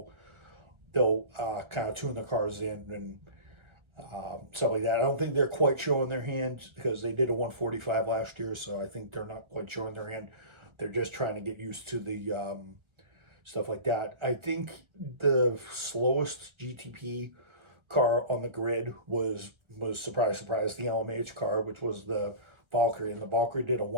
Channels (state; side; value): late; left; 1.3 ms